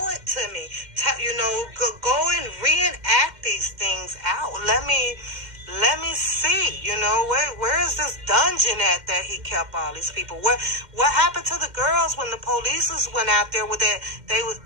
it to me. Go and reenact these things out. Let me see, where is this dungeon at that he kept all these people? What happened to the girls when the police went out there with that?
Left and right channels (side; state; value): left; late; 2.1 ms